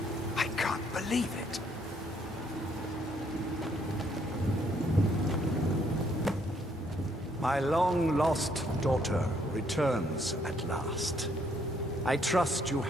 I can't believe it. My long-lost daughter returns at last. I trust you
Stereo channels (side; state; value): both; normal; correlation 0.69